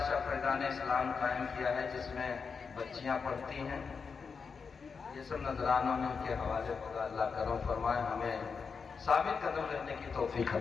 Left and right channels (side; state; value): right; quieter; 5.5 dB